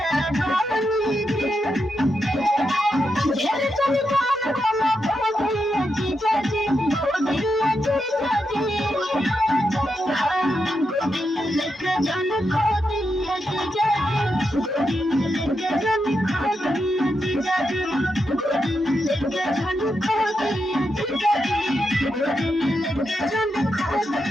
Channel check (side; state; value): both; normal; correlation 0.85